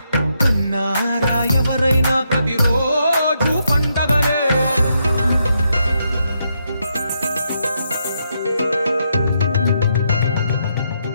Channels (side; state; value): both; inverted; correlation -0.80